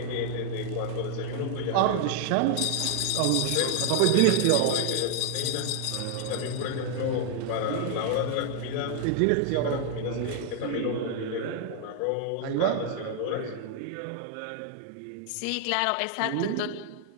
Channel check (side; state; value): both; different; correlation 0.00